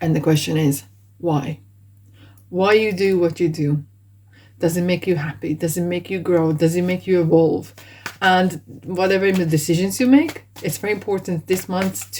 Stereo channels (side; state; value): both; identical; correlation 1.00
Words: the question is why you do what you do. Does it make you happy? Does it make you grow? Does it make you evolve? And whatever the decisions you make, it's very important this month